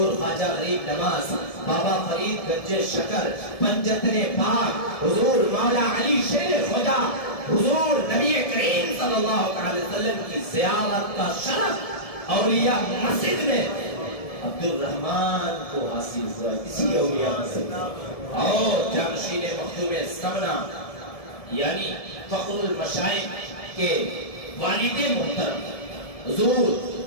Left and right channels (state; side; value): late; right; 1.7 ms